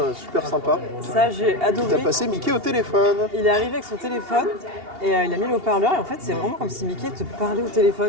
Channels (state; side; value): late; left; 2.8 ms